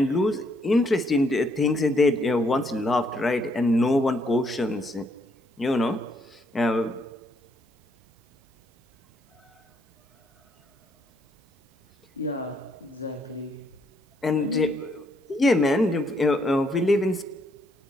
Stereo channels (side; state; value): both; normal; correlation 0.72